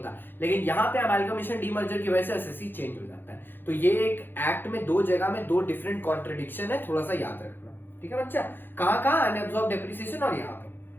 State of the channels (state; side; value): late; right; 0.098 ms